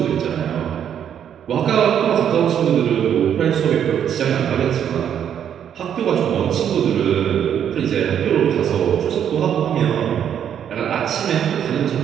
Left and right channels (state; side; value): quieter; left; 9.1 dB